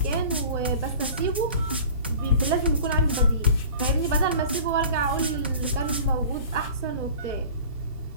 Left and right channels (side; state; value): both; inverted; correlation -0.42